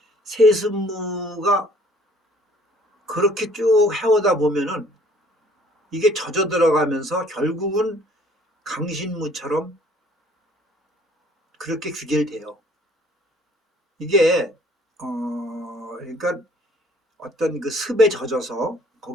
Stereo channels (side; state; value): both; normal; correlation 0.57